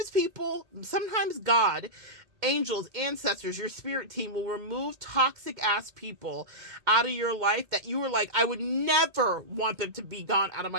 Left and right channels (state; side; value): late; left; 2.1 ms